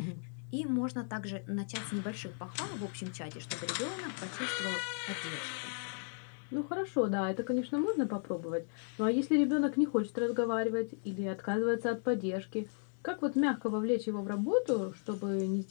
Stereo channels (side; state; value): right; silent; 54 dB below the other